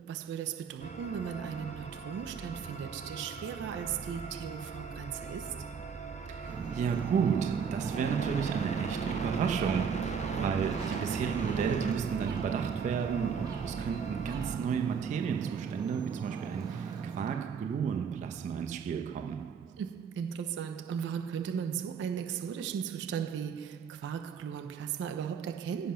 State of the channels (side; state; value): left; quieter; 6.5 dB